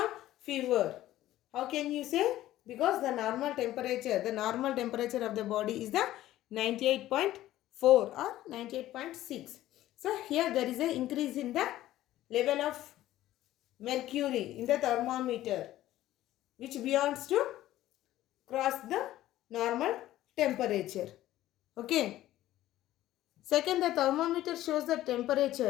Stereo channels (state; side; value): quieter; right; 14.4 dB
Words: fever. How can you say? Because the normal temperature of the body is the 98.4 or 98.6. So here there is an increase in the level of mercury in the thermometer, which beyonds to cross the normal temperature. Okay. Second, the thermometer shows the